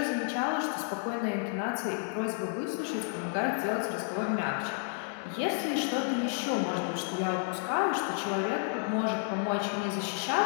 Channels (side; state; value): right; silent; 57 dB below the other